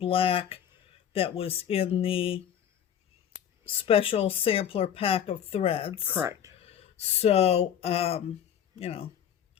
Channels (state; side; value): quieter; right; 9.3 dB